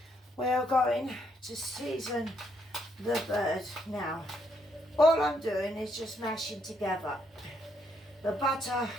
we are going to season the bird. Now, all I'm doing is just mashing together the butter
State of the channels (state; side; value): normal; both; correlation 0.74